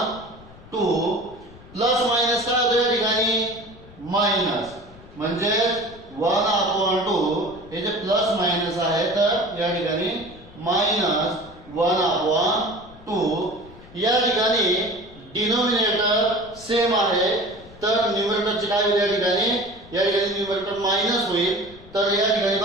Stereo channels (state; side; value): noise; left; rumble, 21 dB below the sound